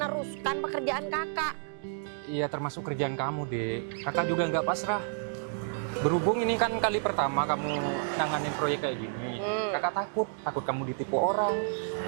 pekerjaan kakak. Iya termasuk kerjaan kamu, Dek. Kakak juga nggak pasrah. Berhubung ini kan kali pertama kamu nanganin proyek kayak gini. Kakak takut kamu ditipu orang,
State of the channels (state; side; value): silent; left; digital silence